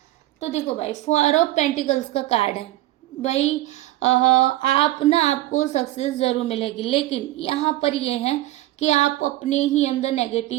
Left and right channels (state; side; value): quieter; left; 16.4 dB